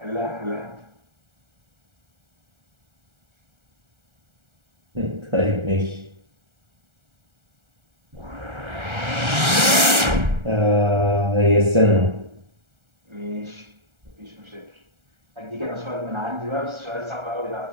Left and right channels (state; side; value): late; left; 1.3 ms